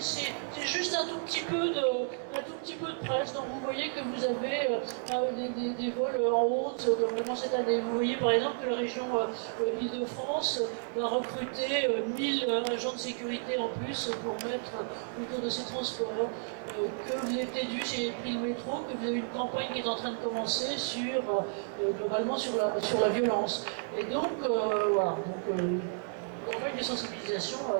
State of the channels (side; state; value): left; silent; digital silence